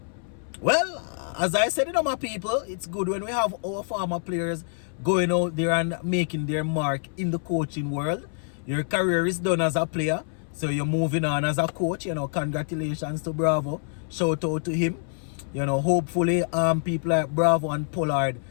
Well, as I said, my people, it's good when we have our former players going out there and making their mark in the coaching world. Your career is done as a player, so you're moving on as a coach. You know, congratulations to Bravo. Shout out to him. You know, hopefully people like Bravo and Pollard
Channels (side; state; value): right; silent; 61 dB below the other